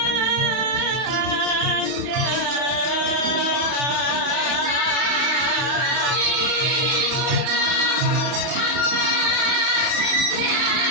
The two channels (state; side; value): late; left; 31 ms